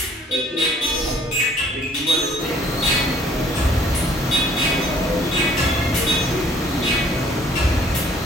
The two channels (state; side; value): normal; both; correlation 0.58